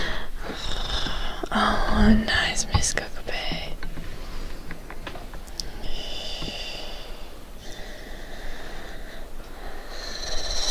Oh, nice, Miss Cockapay.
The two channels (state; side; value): identical; both; correlation 1.00